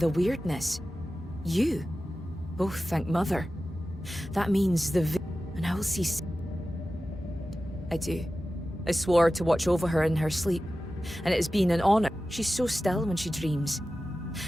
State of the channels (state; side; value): normal; both; correlation 0.94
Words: weirdness. You. Oh, thank Mother. That means and I will see... I do. I swore to watch over her in her sleep. And it has been an honor. She's so still when she dreams.